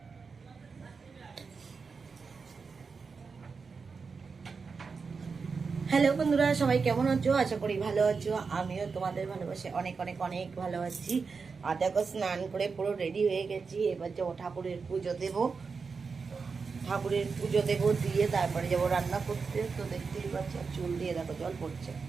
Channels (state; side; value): quieter; left; 5.0 dB